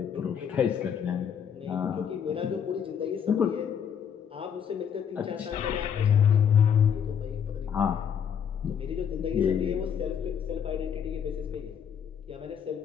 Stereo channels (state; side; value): quieter; right; 7.9 dB